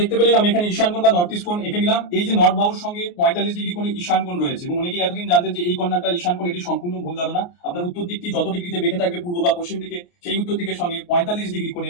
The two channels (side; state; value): right; late; 28 ms